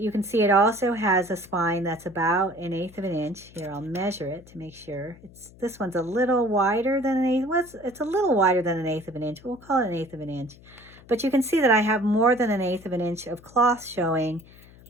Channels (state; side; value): noise; left; hum, 23 dB below the sound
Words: can see it also has a spine that's about 1/8 of an inch. Here, I'll measure it to make sure. This one's a little wider than 1/8. Well, it's a little wider than 1/8 of an inch. We'll call it 1/8 of an inch. But you can see that I have more than 1/8 of an inch of cloth showing